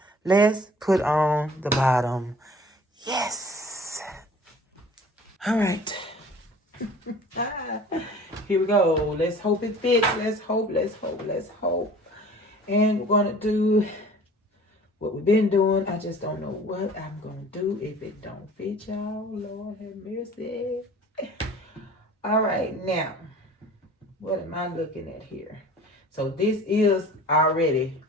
let's put on the bottom. Yes. All right. Here we go. Let's hope it fits. Let's hope. And we're going to do what we've been doing. I just don't know what I'm going to do if it don't fit, y'all. Lord have mercy. All right, now, what am I looking at here? So this is already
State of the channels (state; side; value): normal; both; correlation 0.46